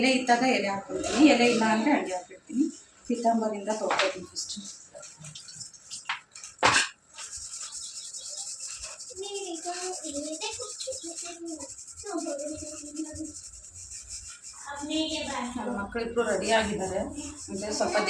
ಇದ್ದಾಗ ಎಲೆ ಹಾಕ್ಬಿಡ್ತೀನಿ, ಎಲೆ ಇಲ್ಲ ಅಂದರೆ ಅಡುಗೆ ಹಾಕಿಡ್ತೀನಿ. ಪೀತಾಂಬರಿಂದ ತೊಳ್ಕೊತೀನಿ ಫಸ್ಟು. ನನ್ನ ಮಕ್ಕಳಿಬ್ರು ರೆಡಿ ಆಗಿದ್ದಾರೆ. ಅಂದರೆ ಸ್ವಲ್ಪ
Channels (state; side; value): identical; both; correlation 1.00